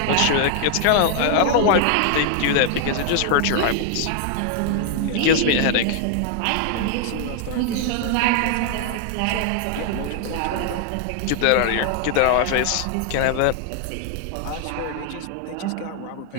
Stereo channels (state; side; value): different; both; correlation 0.00